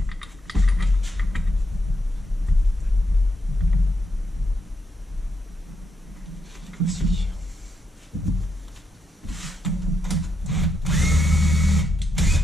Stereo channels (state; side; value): normal; both; correlation 0.81